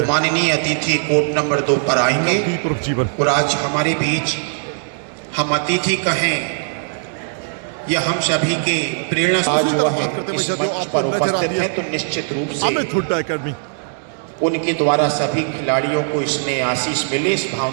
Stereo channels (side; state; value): left; silent; 60 dB below the other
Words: माननीय अतिथि कोर्ट नंबर 2 पर आएंगे। नवदीप उर्फ जीवन और आज हमारे बीच हम अतिथि कहें या हम सभी के प्रेरणा बात करते हैं जो आपको नजर आती है तो निश्चित रूप से अमित हुड्डा एकेडमी उनके द्वारा सभी खिलाड़ियों को इसमें आशीष मिले, इस